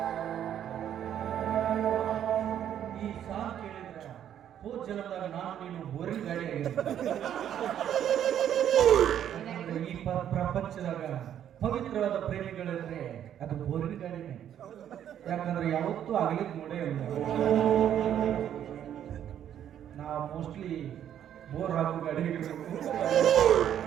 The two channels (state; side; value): quieter; left; 10.1 dB